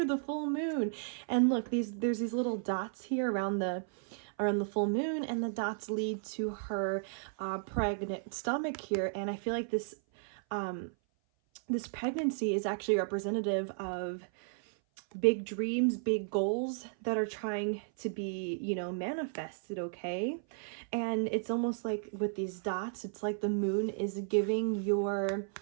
the full moon. And look, there's these little dots here around the full moon, and the dots lead to her pregnant stomach here. And I feel like this this pregnancy is actually representative of big dreams, big goals that are trying to be, you know, manifested, okay? And it's almost like with these dots, it's like the moon is giving your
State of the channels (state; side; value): silent; left; 55 dB below the other